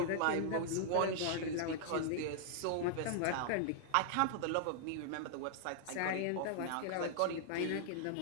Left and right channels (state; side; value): different; both; correlation -0.01